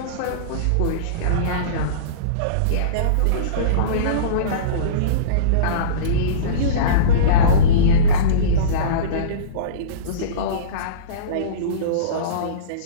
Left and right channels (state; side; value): different; both; correlation -0.09